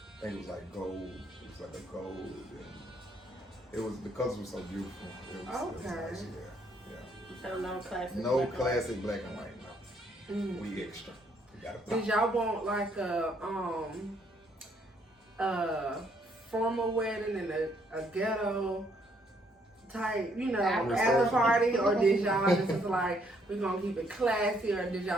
think it was like gold. It was like a gold, and it was the colors were so beautiful. It was nice, yeah. So no classic. No classic black and white. No, we extra. We got Did y'all want like a formal wedding and a ghetto type, after party, or did y'all just like we gonna keep it classy, or did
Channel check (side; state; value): both; normal; correlation 0.69